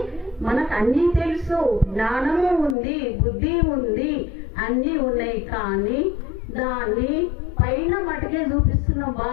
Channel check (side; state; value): right; drops out; at 2.8 s